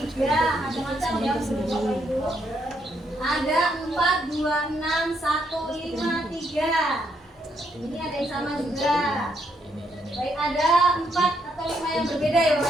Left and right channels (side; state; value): both; normal; correlation 0.75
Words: 3. Macam-macam ya Bapak Ibu. Ada 4, 2, 6, 1, 5, 3. Ini ada yang sama juga. Baik, ada 4 atau 5 yang berbeda ya